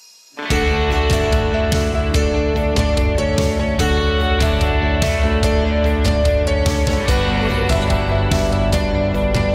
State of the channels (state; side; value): identical; both; correlation 1.00